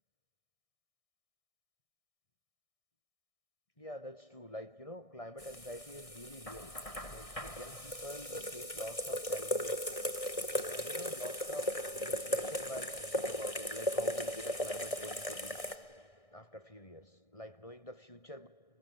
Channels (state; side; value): late; right; 1.6 ms